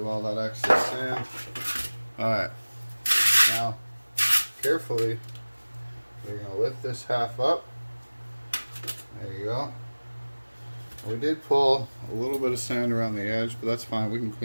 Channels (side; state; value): both; inverted; correlation -1.00